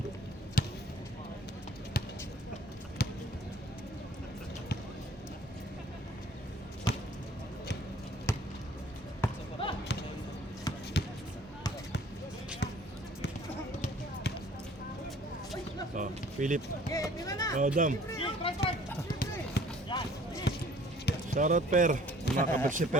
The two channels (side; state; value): both; normal; correlation 0.54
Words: Oh, Philip. Oh, Dam. Shoutout Per. Makakabot si